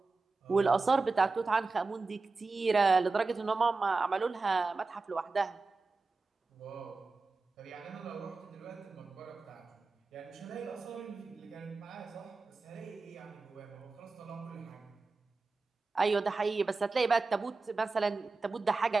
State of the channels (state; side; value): quieter; left; 3.9 dB